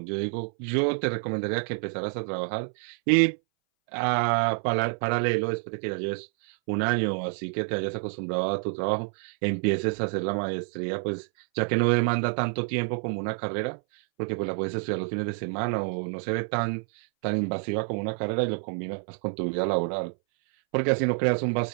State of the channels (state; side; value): silent; left; 60 dB below the other